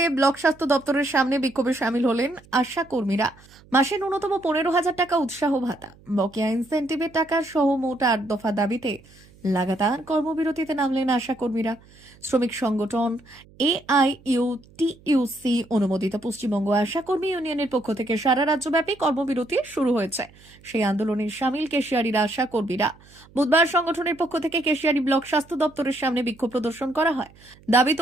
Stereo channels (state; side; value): noise; right; hum, 26 dB below the sound